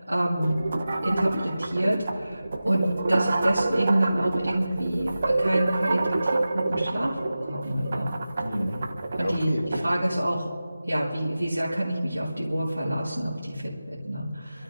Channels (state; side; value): inverted; both; correlation -0.95